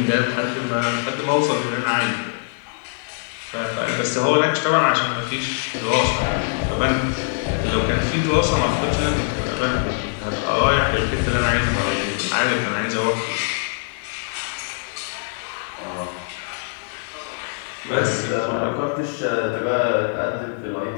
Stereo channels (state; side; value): silent; right; 64 dB below the other